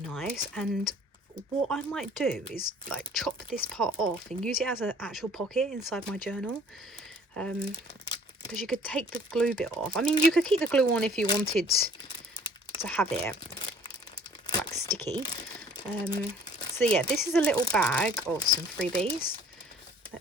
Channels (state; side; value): normal; both; correlation 0.54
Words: and what I might do is like chop this part off and use it as an actual pocket inside my journal, because you could take the glue bit off. I mean, you could keep the glue on if you wanted to have it like sticky. So yeah, this is a little bag of some freebies.